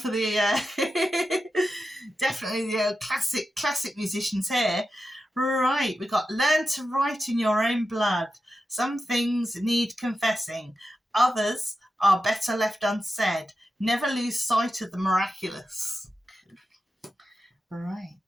the definitely the classic musicians here. Right, we've got learn to write in your own blood. Some things need confessing. Others are better left unsaid. Never lose sight of the miraculous. Right,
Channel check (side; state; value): both; normal; correlation 0.91